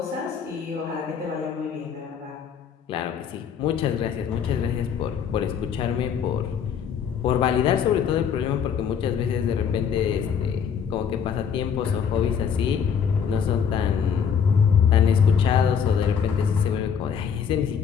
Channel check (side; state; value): right; quieter; 7.3 dB